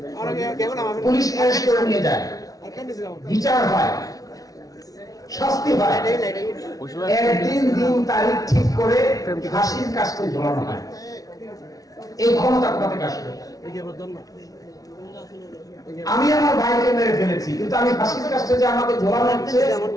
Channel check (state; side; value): late; right; 0.18 ms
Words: পুলিশ অ্যারেস্ট করে নিয়ে যায়, বিচার হয়, শাস্তি হয়, একদিন দিন তারিখ ঠিক করে ফাঁসির কাজটা ঝোলানো হয়। এই ক্ষমতা কোথা থেকে আসবে? আমি আমার ভাইকে মেরে ফেলেছি, কিন্তু আমি ফাঁসির কাজটা যে আমাকে ঝোলানো হচ্ছে,